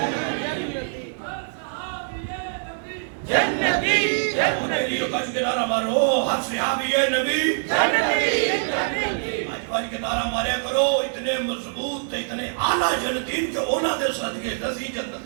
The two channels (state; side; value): silent; left; digital silence